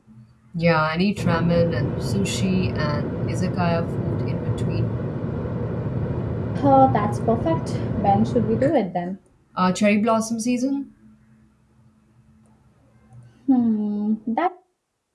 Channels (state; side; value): identical; both; correlation 1.00